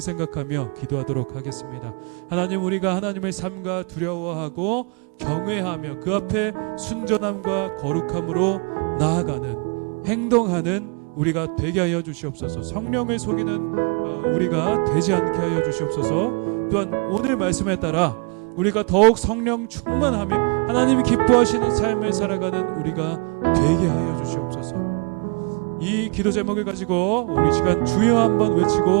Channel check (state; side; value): quieter; left; 34.5 dB